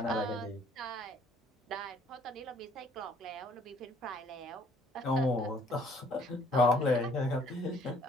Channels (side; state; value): both; normal; correlation 0.60